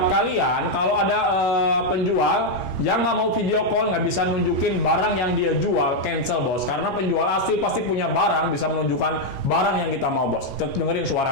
kalian, kalau ada penjual yang nggak mau video call, nggak bisa nunjukin barang yang dia jual, cancel bos. Karena penjual asli pasti punya barang, bisa menunjukkan barang yang kita mau bos. Dengerin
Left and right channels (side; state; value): right; late; 15 ms